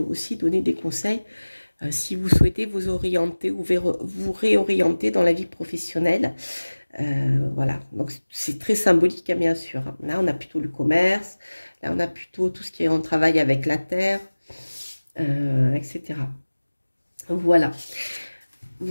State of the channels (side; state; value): both; inverted; correlation -1.00